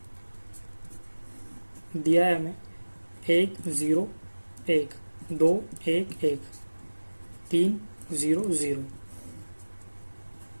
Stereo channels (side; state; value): both; inverted; correlation -1.00